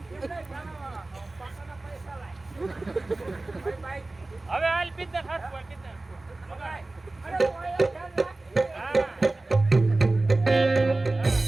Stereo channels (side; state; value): left; quieter; 3.0 dB